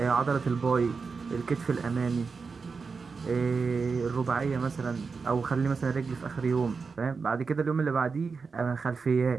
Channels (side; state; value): left; quieter; 4.9 dB